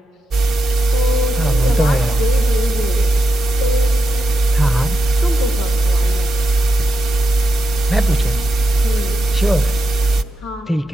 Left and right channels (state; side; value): normal; both; correlation 0.87